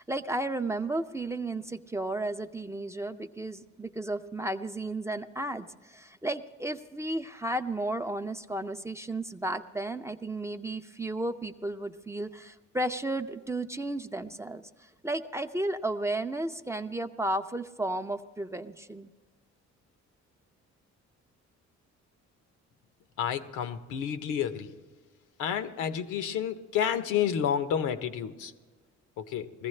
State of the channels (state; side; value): normal; both; correlation 0.47